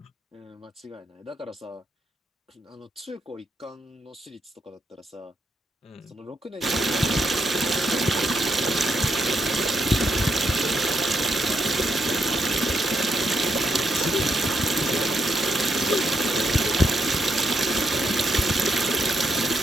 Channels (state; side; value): normal; both; correlation 0.79